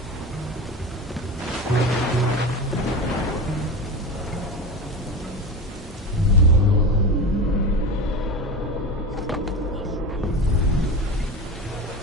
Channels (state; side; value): normal; both; correlation 0.26